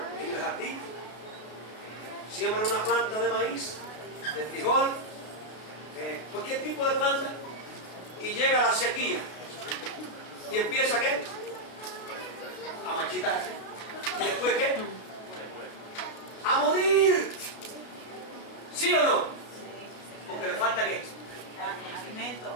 en el jardín, siembra una planta de maíz, de frijol, cualquier tipo de planta, y llega la sequía y empieza ¿qué? A marchitarse. ¿Y después qué? A morir. ¿Sí o no? Porque le falta ¿qué? Alimento.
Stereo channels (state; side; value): late; right; 33 ms